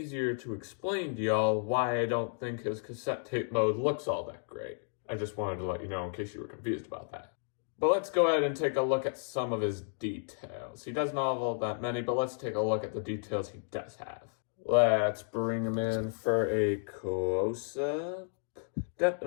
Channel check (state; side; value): silent; right; digital silence